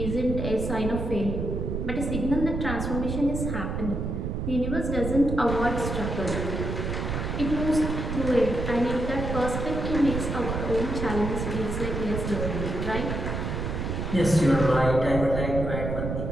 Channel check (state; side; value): noise; right; rumble, 3 dB below the sound